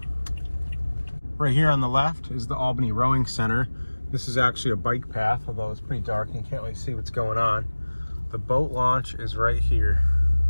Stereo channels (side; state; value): both; inverted; correlation -1.00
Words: Right here on the left is the Albany Rowing Center. This is actually a bike path, although it's pretty dark and you can't really see what's going on. The boat launch is right here.